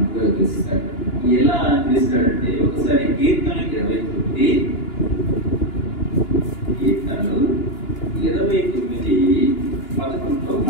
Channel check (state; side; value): late; right; 2.9 ms